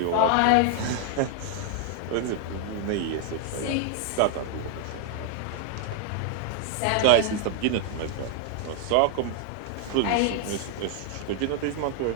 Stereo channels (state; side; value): different; both; correlation 0.00